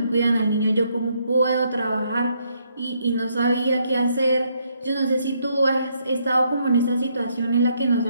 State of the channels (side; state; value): both; inverted; correlation -0.74